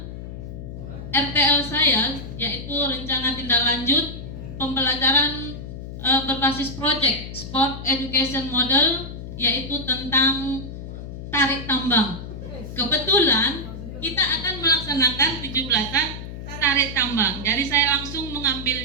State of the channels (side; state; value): left; noise; hum, 10 dB below the sound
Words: RTL saya, yaitu rencana tindak lanjut pembelajaran berbasis project Sport Education Model, yaitu tentang tarik tambang. Kebetulan kita akan melaksanakan 17-an tarik tambang. Jadi saya langsung